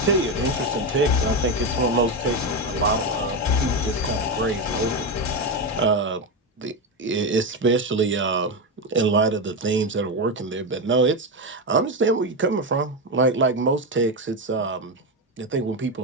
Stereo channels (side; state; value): both; normal; correlation 0.12